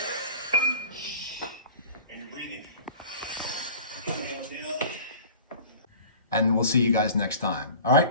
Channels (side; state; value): both; inverted; correlation -0.41